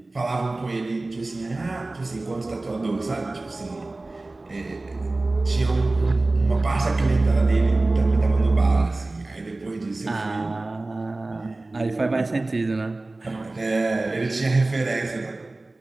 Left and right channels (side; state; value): left; quieter; 3.0 dB